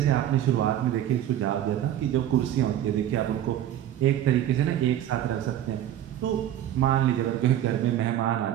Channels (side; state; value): left; quieter; 11.7 dB